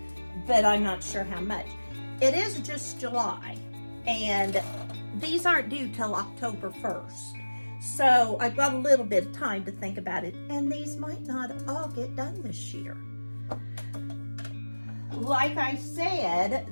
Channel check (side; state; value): both; inverted; correlation -1.00